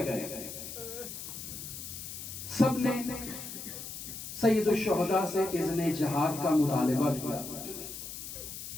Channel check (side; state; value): left; noise; hiss, 9 dB below the sound